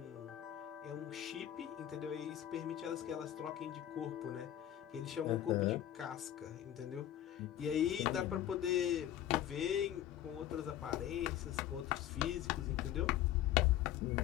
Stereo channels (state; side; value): quieter; right; 11.9 dB